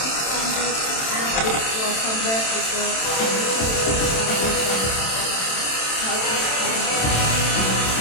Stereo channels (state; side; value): late; right; 27 ms